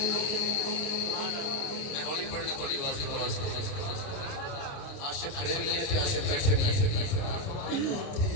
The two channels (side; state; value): right; late; 29 ms